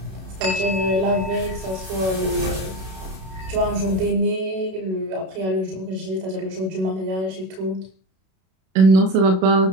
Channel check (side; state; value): left; late; 32 ms